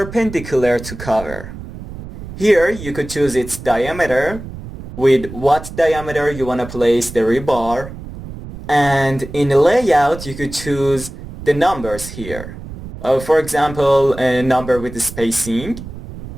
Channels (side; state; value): right; noise; rumble, 12 dB below the sound